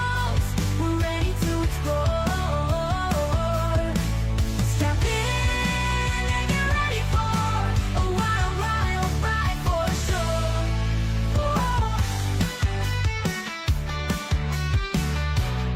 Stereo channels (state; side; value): identical; both; correlation 1.00